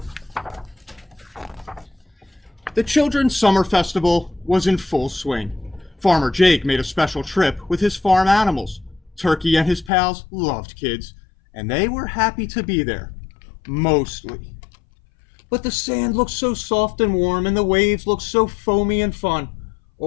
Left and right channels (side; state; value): right; drops out; at 9.9 s